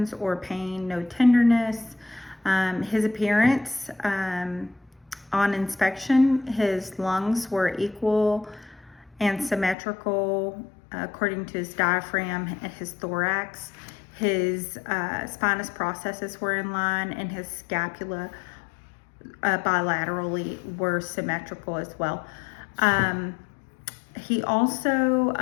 or pain, no tenderness. His appearance on inspection, his lungs were equal and symmetrical according to his diaphragm and his thorax. His spinous processes were in line, and his scapula bilaterally were symmetrical as well. He also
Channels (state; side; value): drops out; right; at 9.8 s